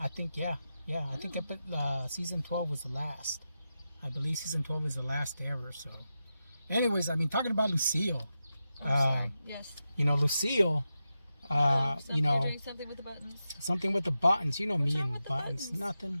think I think season 12 was the last. I believe season 12 is the last ever. So. Anyways, talking about Lucille. Sorry. Yes. Lucille. Doing something with the buttons. Something with the buttons. Me wrong and with the buttons.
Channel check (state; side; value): inverted; both; correlation -0.90